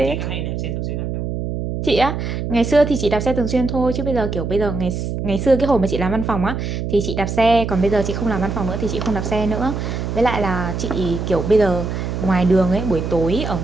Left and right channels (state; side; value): noise; right; hum, 3 dB below the sound